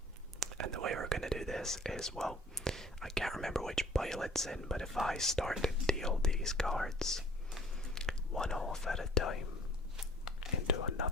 And the way we're going to do this is, well, I can't remember which pile it's in, but if I start to deal these cards one off at a time into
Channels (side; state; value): both; normal; correlation 0.52